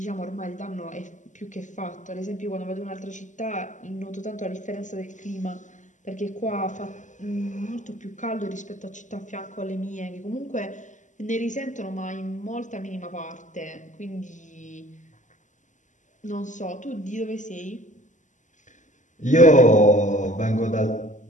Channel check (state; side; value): late; right; 0.36 ms